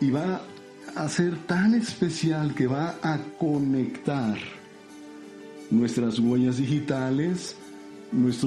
va a ser tan especial que va a conectar nuestras huellas digitales,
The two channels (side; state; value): both; identical; correlation 1.00